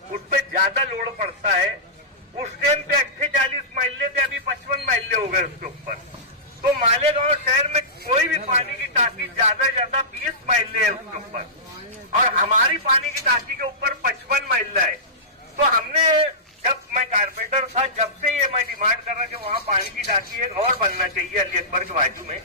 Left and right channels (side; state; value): both; normal; correlation -0.18